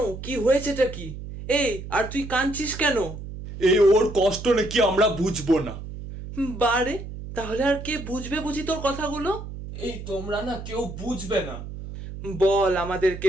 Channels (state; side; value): noise; right; hum, 10 dB below the sound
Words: কি হয়েছেটা কি? এই আর তুই কাঁদছিস কেন? এই ওর কষ্ট নাকি আমরা বুঝবো না। বারে, তাহলে আর কে বুঝবে বুঝি তোর কথাগুলো? এই তোমরা না কেউ বুঝবে না। বল,